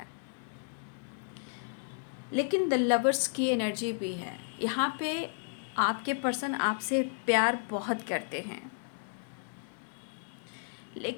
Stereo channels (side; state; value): right; silent; digital silence